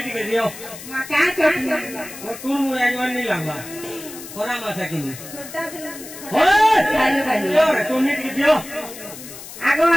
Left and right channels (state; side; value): noise; left; hiss, 14 dB below the sound